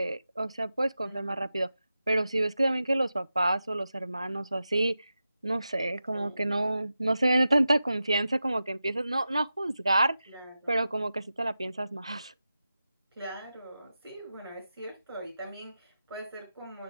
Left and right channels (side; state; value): both; inverted; correlation -0.92